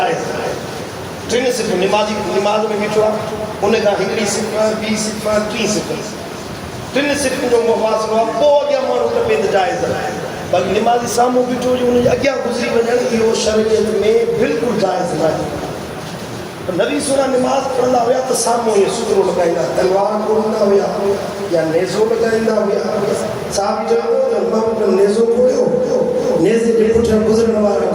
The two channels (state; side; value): identical; both; correlation 1.00